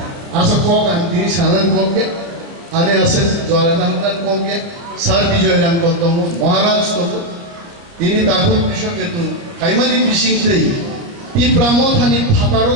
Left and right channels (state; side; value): late; left; 30 ms